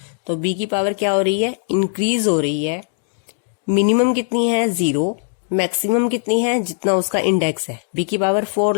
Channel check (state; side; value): silent; right; digital silence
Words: तो बी की पावर क्या हो रही है, इंक्रीज हो रही है। मिनिमम कितनी है 0, मैक्सिमम कितनी है, जितना उसका इंडेक्स है। बी की पावर 4